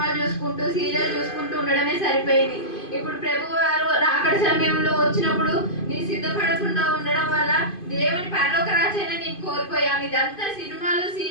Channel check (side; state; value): right; late; 2.5 ms